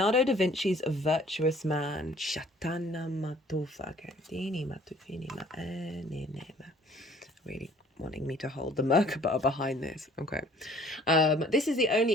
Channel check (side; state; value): both; normal; correlation 0.55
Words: Vinci's Virtuous Man. Really wanting me to hold the Merkaba behind this. Okay. This is the